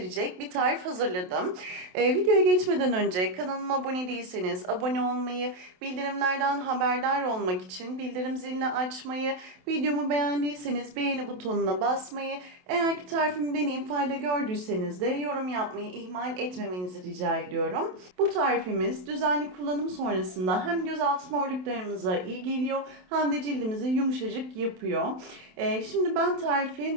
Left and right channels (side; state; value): left; late; 27 ms